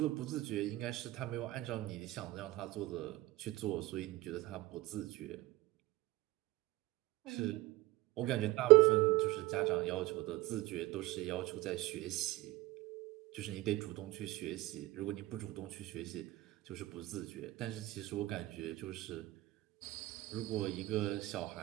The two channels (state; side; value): quieter; left; 19.0 dB